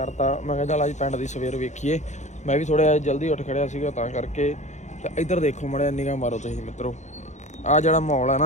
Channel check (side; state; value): right; late; 0.34 ms